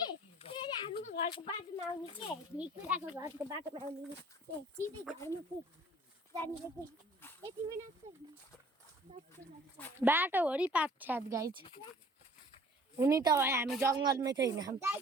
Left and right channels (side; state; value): both; normal; correlation 0.53